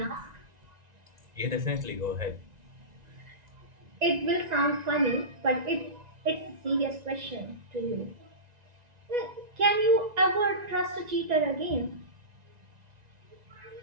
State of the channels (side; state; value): left; late; 1.9 ms